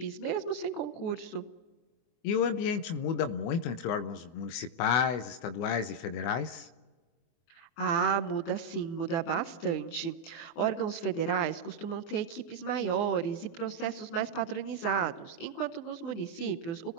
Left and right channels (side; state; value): right; late; 24 ms